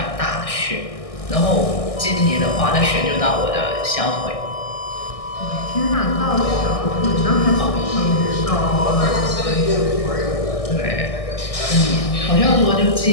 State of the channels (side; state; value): right; late; 1.6 ms